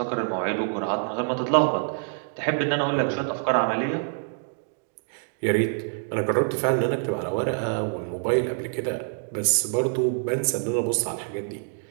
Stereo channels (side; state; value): left; silent; 61 dB below the other